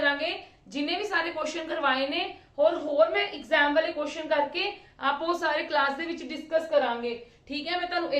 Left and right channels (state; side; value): identical; both; correlation 1.00